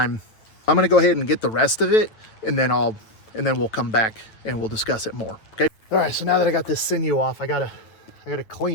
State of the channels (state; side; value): late; right; 9.2 ms